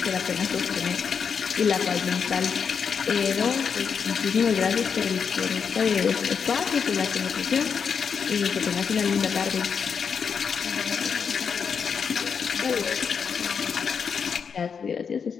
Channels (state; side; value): quieter; right; 6.4 dB